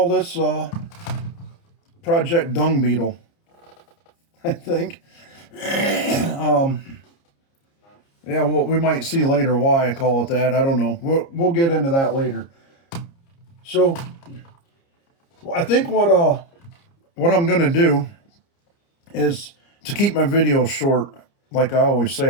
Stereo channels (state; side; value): late; right; 30 ms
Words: this Project Dung Beetle, I think. Yeah, well, we might see later why I call it that. I don't know. We'll get into that later. So I think what I'm going to do is, to keep my videos short, like I always